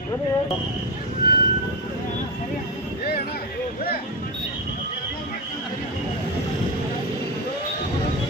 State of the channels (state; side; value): normal; both; correlation 0.12